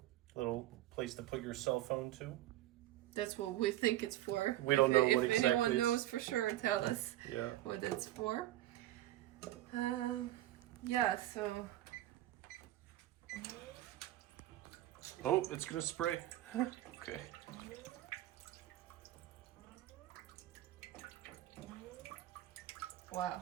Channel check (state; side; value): quieter; left; 14.7 dB